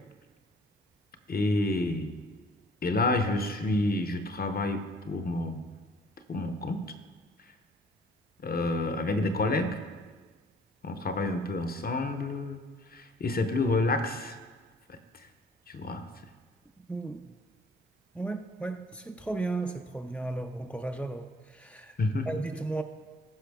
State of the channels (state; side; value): normal; both; correlation 0.56